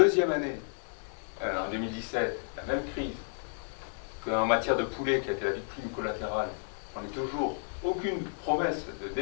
année, en 2017, la même crise, qu'en matière de poulet qui a été la victime collatérale, on n'a toujours aucune promesse de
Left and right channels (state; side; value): silent; right; digital silence